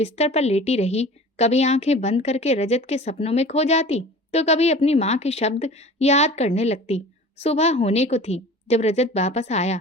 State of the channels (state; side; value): normal; both; correlation 0.41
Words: पर लेटी रही। कभी आंखें बंद करके रजत के सपनों में खो जाती, तो कभी अपनी माँ के शब्द याद करने लगती। सुबह होने को थी जब रजत वापस आया।